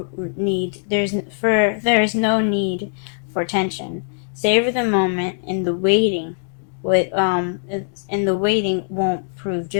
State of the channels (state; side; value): silent; right; digital silence